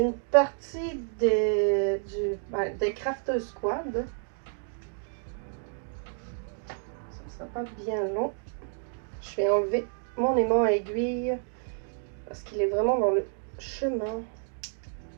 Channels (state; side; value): silent; left; 58 dB below the other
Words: partie des Crafters Squad. Ça sera pas bien long. Je vais enlever mon aimant à aiguille parce qu'il est vraiment dans le chemin.